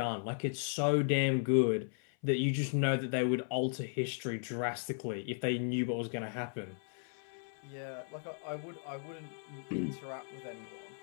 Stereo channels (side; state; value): right; silent; 54 dB below the other